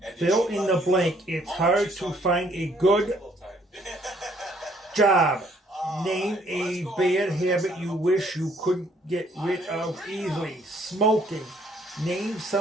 And did fill she in love the you blank. the It's moment hard she saw to you? find a good Little time. job. Name Let's a go on bad to the next habit item you up wish the you list. couldn't get rid of easily. Smoking. Name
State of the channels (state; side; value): normal; both; correlation 0.64